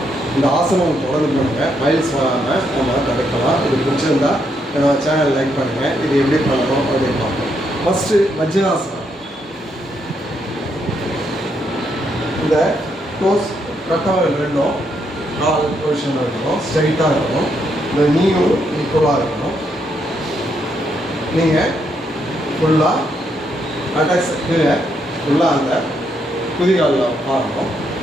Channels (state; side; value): normal; both; correlation 0.77